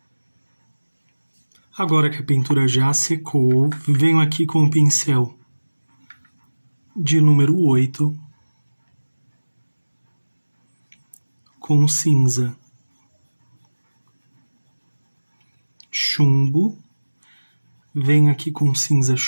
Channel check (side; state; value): both; inverted; correlation -1.00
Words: Agora que a pintura já secou, venho aqui com o pincel de número 8 com cinza, chumbo. Venho aqui com cinza